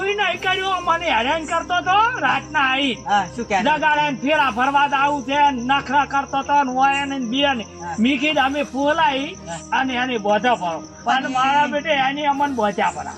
નહીં કર્યું મને હેરાન કરતો તો રાતના આવી હા શું કહે જગાડે ને ફેરા ફરવા આવું છે ને નખરા કરતો તો ને હોય ને બે ને મી કીધું અમે ફોલાઈ અને એની બોધા ફરો અને મારા બેટે એની અમન બોધ્યા પડા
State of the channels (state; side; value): identical; both; correlation 1.00